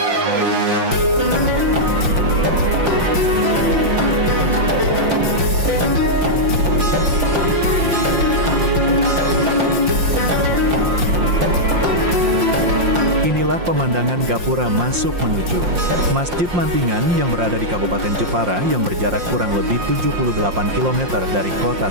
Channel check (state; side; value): late; left; 5.7 ms